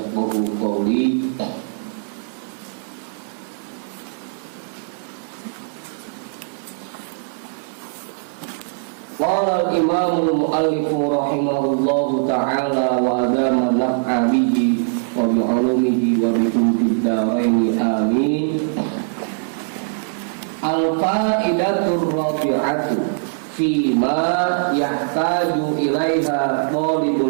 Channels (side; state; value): left; silent; digital silence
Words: qawli. Qala al-imam al-mu'allif rahimahullahu ta'ala wa adama naf'a bihi wa bi 'ulumihi wa bi kumtid daraini amin. Al-fa'idatur rabi'atu fima yahtaju ilaiha